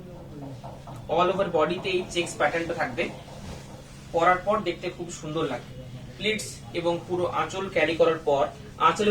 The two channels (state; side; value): identical; both; correlation 1.00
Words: অল ওভার বডিতে এই চেকস প্যাটার্নটা থাকবে, পরার পর দেখতে খুব সুন্দর লাগে। প্লিটস এবং পুরো আঁচল ক্যারি করার পর আঁচল